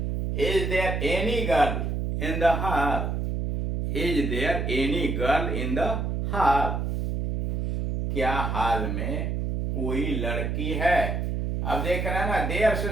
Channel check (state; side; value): noise; right; hum, 1 dB below the sound